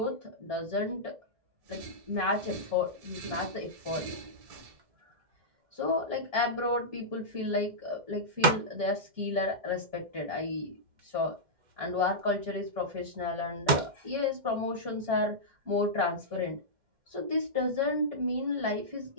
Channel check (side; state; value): left; late; 2.1 ms